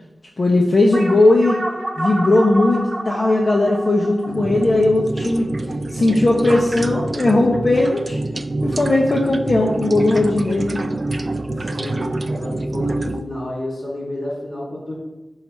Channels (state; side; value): normal; both; correlation 0.94